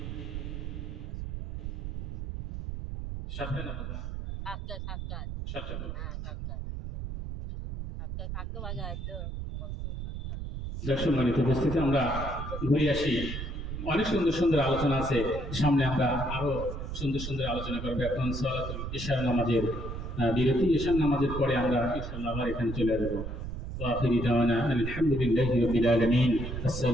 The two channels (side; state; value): right; noise; rumble, 6 dB below the sound